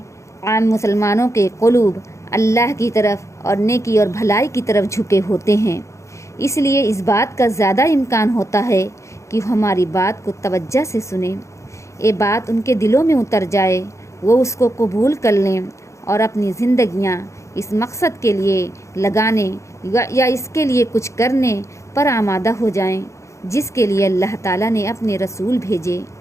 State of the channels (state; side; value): late; right; 0.14 ms